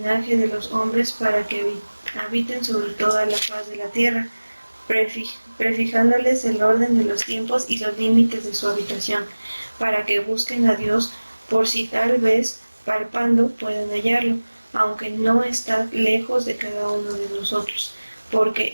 de los hombres para que habiten sobre toda la faz de la tierra, prefijándoles el orden de los tiempos y los límites de su habitación, para que busquen a Dios por si tal vez, palpando, puedan hallarlo, aunque no está lejos de cada uno de nosotros, porque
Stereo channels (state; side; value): inverted; both; correlation -1.00